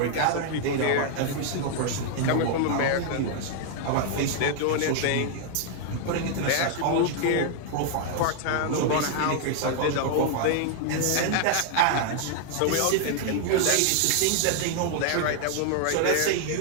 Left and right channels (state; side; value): different; both; correlation 0.00